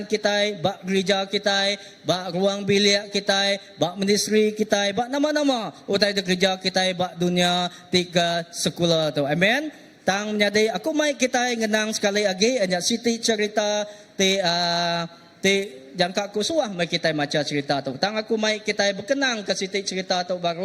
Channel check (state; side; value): identical; both; correlation 1.00